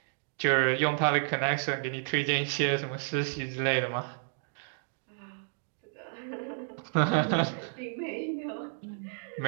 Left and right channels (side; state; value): left; silent; digital silence